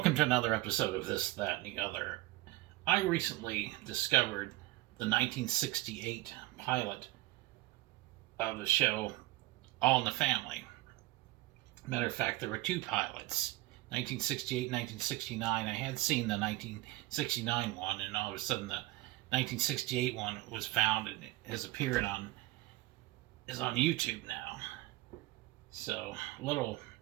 to another episode of This, That, and the Other. I recently discovered the 1968 pilot of the show All in the Family. Matter of fact, there were two pilots, 1968 and 1969. I had seen the 1969 one, and all of a sudden the 1968 one was found and has appeared is on YouTube now. So, a little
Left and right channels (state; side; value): quieter; left; 19.1 dB